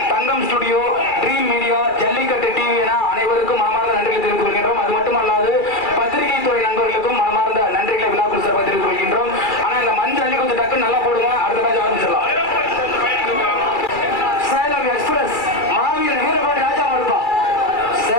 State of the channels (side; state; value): right; late; 2.3 ms